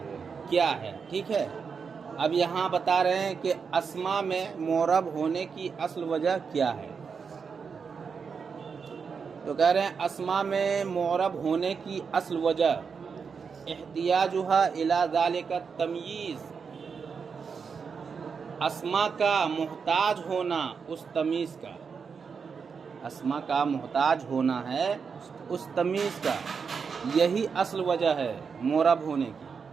کیا ہے، ٹھیک ہے۔ اب یہاں بتا رہے ہیں کہ اسماء میں معرب ہونے کی اصل وجہ کیا ہے، تو کہہ رہے ہیں اسماء میں معرب ہونے کی اصل وجہ احتیاجها الی ذلک التمییز، اسماء کا محتاج ہونا اس تمیز کا، اسماء کا محتاج ہونا ہے اس تمیز کا، یہی اصل وجہ ہے معرب ہونے کی۔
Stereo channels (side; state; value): left; quieter; 5.8 dB